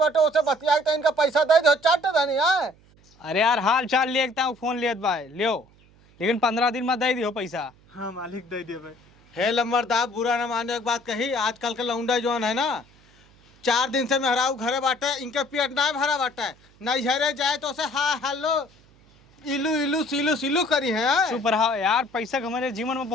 उसे बतिया के इनका पैसा दे दो। चाट धनी है। अरे यार हाल चाल लेता हूँ, फोन लेत बा लियो, लेकिन 15 दिन में दे दियो पैसा। हाँ मालिक दे दिए बे। हे लंबरदार, बुरा न माने एक बात कही। आजकल के लौंडा जौन है ना, 4 दिन से मेहरारू घरे बाटे, इनके पेट ना भरा बाटे, नहीं हरे जाए तो उसे हाँ हेलो इलू इलू सिलू सिलू करी है। चुप रहो यार, पैसा हमारे जीवन में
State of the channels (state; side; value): noise; right; hum, 29 dB below the sound